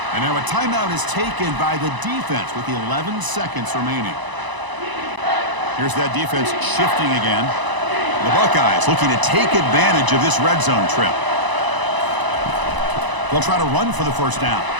And now a timeout is taken by the defense with 11 seconds remaining. Here's that defense shifting again. The Buckeyes looking to take advantage of this red zone trip. They'll try to run for the first down.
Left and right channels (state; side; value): late; left; 1.0 ms